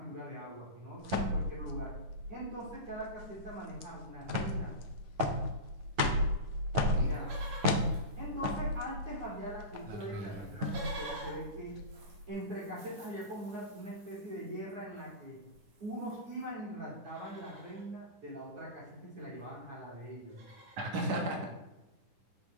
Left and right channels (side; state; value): left; late; 9.3 ms